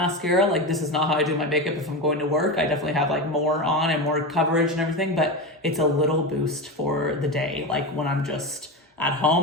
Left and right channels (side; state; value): both; normal; correlation 0.20